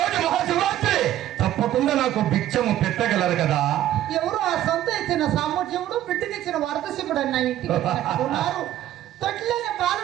మహాశివరాత్రి, తప్పకుండా నాకు భిక్షము పెట్టగలరు కదా? ఎవరు ఆ సొంత ఇచ్చిన సామర్థ్యముడు బిడ్డకిచ్చిన వరదశివుడు అన్న ఇంటికి ఉన్నారు. తొట్టిలోని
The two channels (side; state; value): left; quieter; 12.8 dB